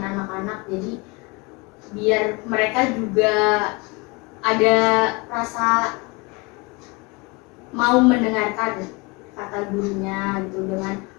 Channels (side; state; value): right; quieter; 27.0 dB